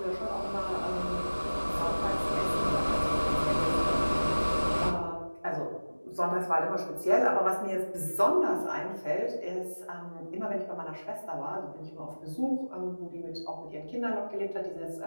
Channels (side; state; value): both; inverted; correlation -1.00